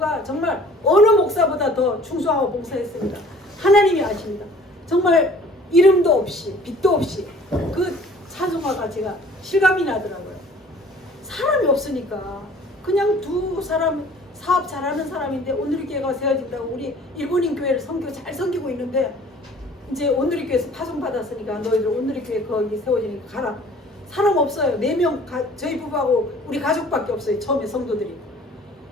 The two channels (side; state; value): both; normal; correlation 0.51